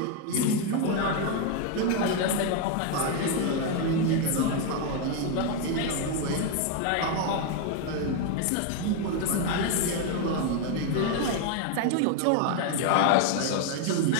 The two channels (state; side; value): different; both; correlation 0.01